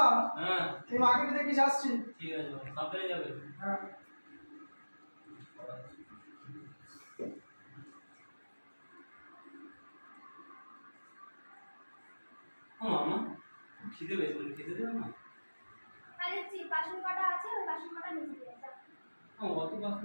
হ্যাঁ তুমি মাকে একটু দেখিস আসছি ঠিক আছে সাবধানে যাবে হ্যাঁ ও মামা খিদে পেয়েছে খেতে দেবে না আরে বাসন কটা আছে ওই বাসন কটা নিচে দিয়ে যাও অত বাসন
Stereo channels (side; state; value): both; inverted; correlation -1.00